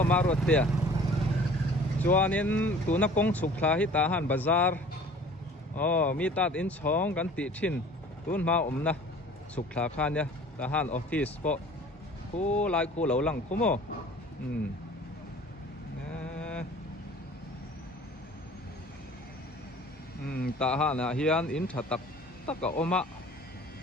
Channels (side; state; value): both; normal; correlation 0.48